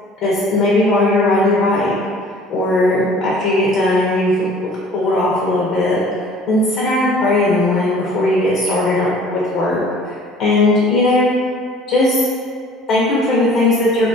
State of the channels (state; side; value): normal; both; correlation 0.50